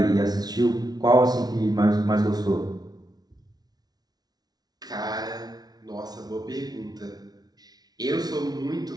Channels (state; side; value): late; left; 0.19 ms